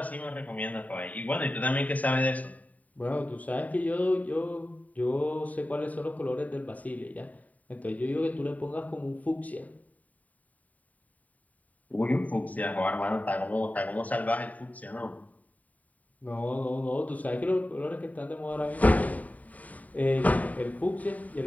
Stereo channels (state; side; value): late; right; 0.072 ms